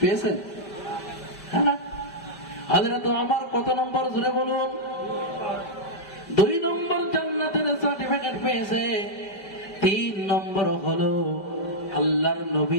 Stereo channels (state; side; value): late; right; 5.1 ms